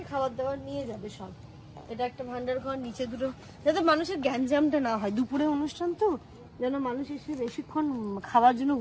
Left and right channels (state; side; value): identical; both; correlation 1.00